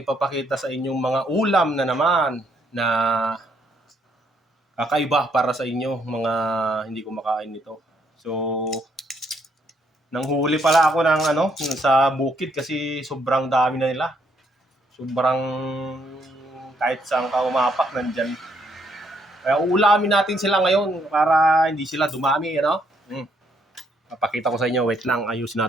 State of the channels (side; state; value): both; normal; correlation 0.72